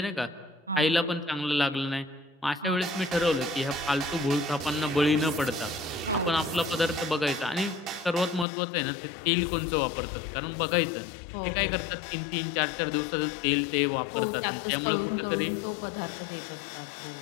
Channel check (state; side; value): drops out; right; at 8.5 s